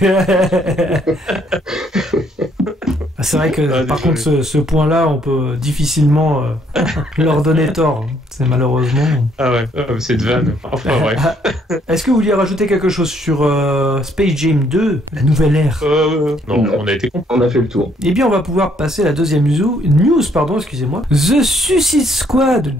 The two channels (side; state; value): both; normal; correlation 0.68